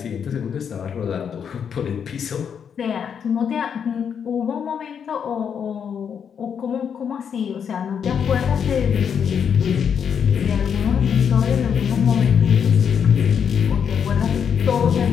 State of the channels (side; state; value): right; quieter; 7.5 dB